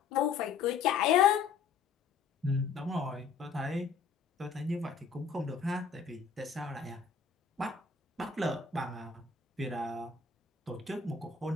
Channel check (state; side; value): quieter; right; 5.9 dB